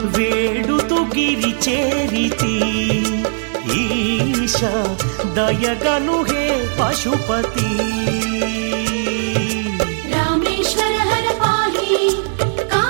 వేడుతు గిరి చేరితి ఈశ దయగను హే పశుపతి రామేశ్వర హర పాహి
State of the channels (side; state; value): left; silent; digital silence